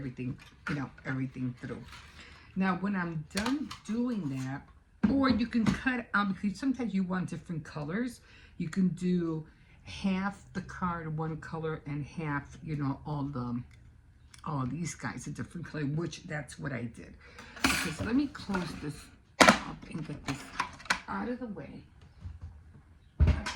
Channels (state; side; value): identical; both; correlation 1.00